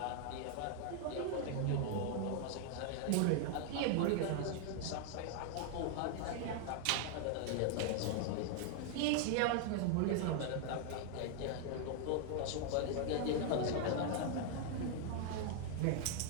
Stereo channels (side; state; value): both; different; correlation 0.00